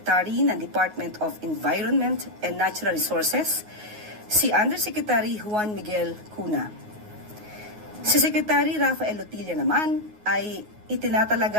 ng Department of Environment and Natural Resources si Undersecretary Juan Miguel Cuna. Si Secretary Rafael Lotilla naman ay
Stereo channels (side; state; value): left; late; 9.5 ms